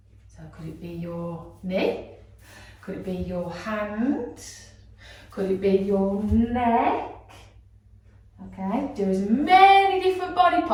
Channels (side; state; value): both; identical; correlation 1.00